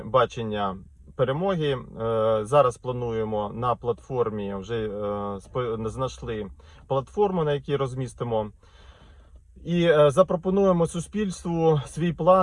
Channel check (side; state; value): both; identical; correlation 1.00